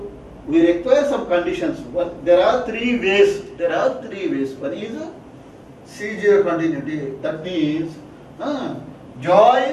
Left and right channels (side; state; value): both; identical; correlation 1.00